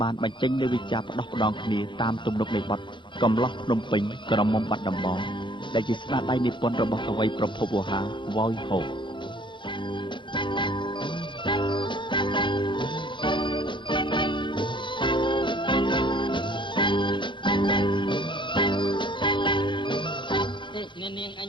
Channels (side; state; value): right; late; 0.23 ms